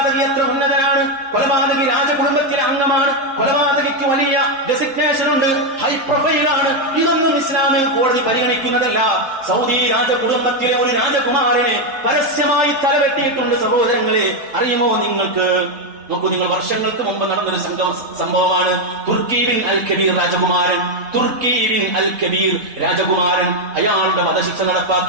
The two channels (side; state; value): left; late; 3.7 ms